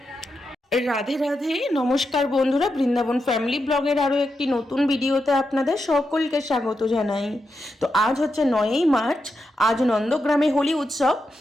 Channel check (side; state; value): both; normal; correlation 0.86